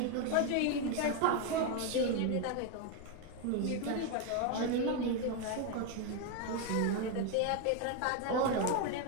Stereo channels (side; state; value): both; different; correlation 0.01